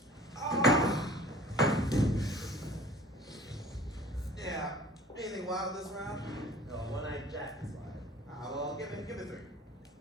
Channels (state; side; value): normal; both; correlation 0.47